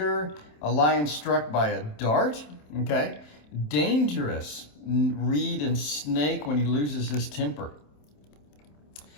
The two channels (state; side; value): late; right; 27 ms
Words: A lion struck by a dart. Okay. Dangerous. Reed and snake when he loses his temper.